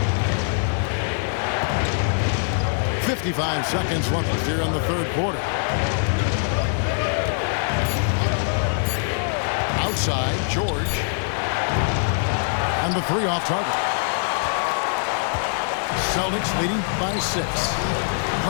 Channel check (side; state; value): right; silent; digital silence